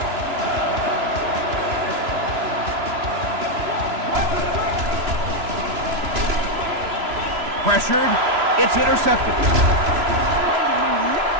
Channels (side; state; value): left; late; 3.0 ms